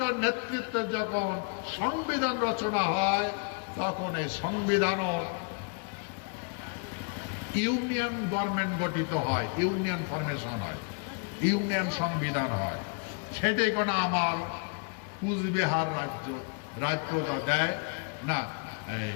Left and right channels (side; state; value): right; quieter; 37.8 dB